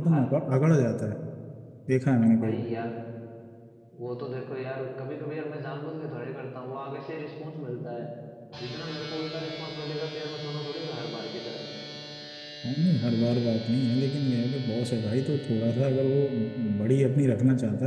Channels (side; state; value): both; identical; correlation 1.00